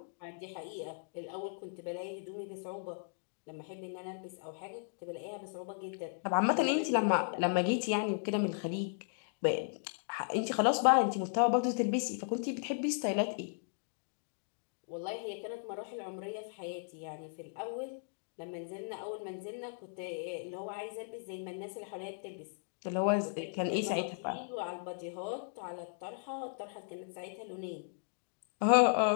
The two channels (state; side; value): silent; right; digital silence